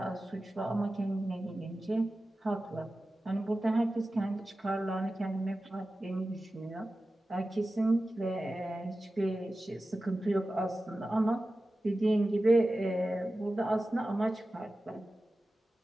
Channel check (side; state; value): both; normal; correlation 0.95